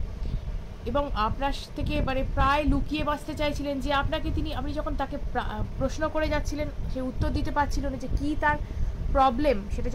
এবং আপনার থেকে মানে প্রায় লুকিয়ে বাঁচতে চাইছিলেন, যে আপনি যখন তাকে প্রশ্ন করে যাচ্ছিলেন সে উত্তর দিতে পারছিল না, যে কী তার প্রবলেম সেটা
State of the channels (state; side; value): identical; both; correlation 1.00